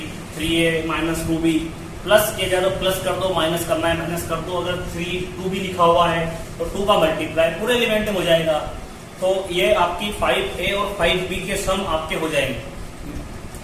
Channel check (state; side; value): identical; both; correlation 1.00